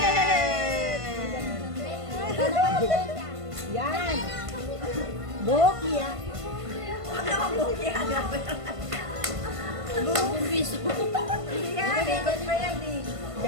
Yan. Boki ah. Huwag naman boki ah. Bumbis. Yan, ikot pa yan eh.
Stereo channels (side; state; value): left; late; 1.5 ms